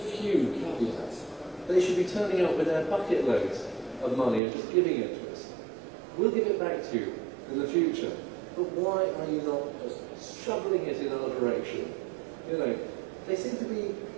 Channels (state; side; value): drops out; left; at 4.4 s